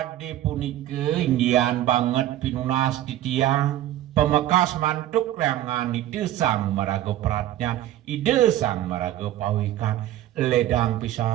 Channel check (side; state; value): left; quieter; 13.4 dB